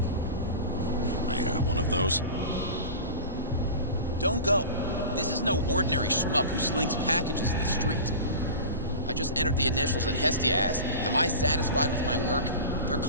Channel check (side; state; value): both; inverted; correlation -0.33